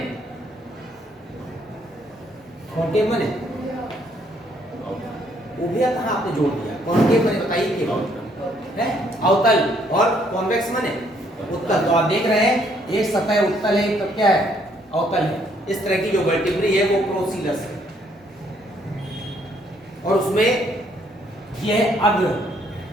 कॉन्केव बने, उभया कहाँ आपने जोड़ दिया? कॉन्केव बने, बताइए क्या है? अवतल। और कॉन्वेक्स बने उत्तल। तो आप देख रहे हैं एक सतह उत्तल है, एक क्या है अवतल है। इस तरह की जो वर्टिब्री है वो प्रोसीलस है, और उसमें यह है अग्र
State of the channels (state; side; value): normal; both; correlation 0.67